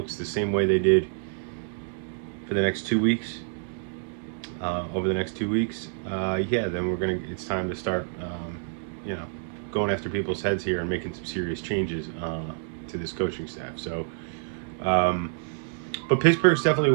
the same way they did for the next 2 weeks, over the next 2 weeks, yeah, then it's time to start, you know, going after people's heads here and making some serious changes to this coaching staff. So, but Pittsburgh's definitely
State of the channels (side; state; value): left; silent; digital silence